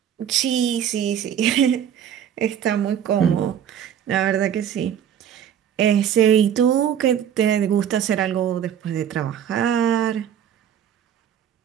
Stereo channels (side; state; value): left; quieter; 9.3 dB